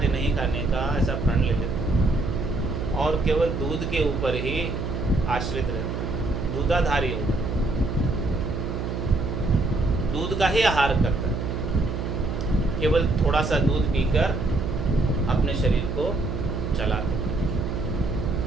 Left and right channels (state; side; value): noise; right; hum, 3 dB below the sound